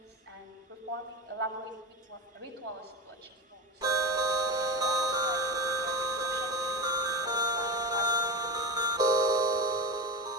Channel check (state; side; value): normal; both; correlation 0.21